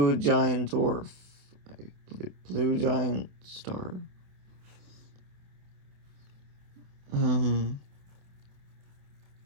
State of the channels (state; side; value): late; left; 28 ms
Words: giant dwarf, a blue giant star.